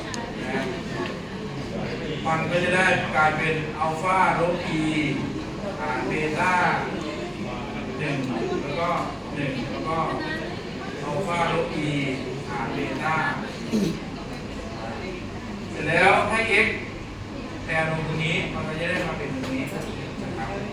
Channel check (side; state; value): both; identical; correlation 1.00